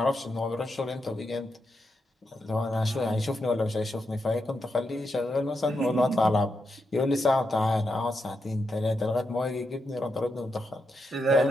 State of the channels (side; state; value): both; normal; correlation 0.84